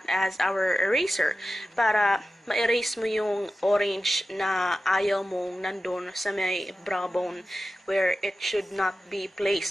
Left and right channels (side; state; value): both; normal; correlation 0.94